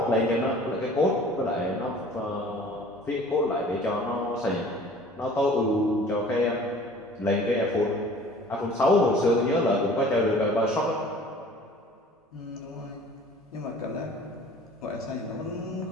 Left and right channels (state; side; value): normal; both; correlation 0.48